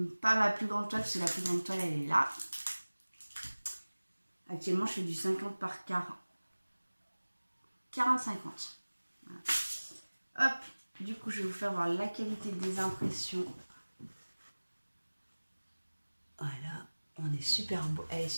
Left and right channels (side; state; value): both; inverted; correlation -1.00